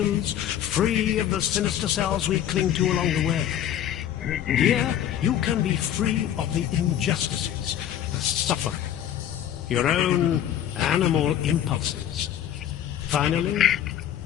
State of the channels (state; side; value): quieter; right; 10.7 dB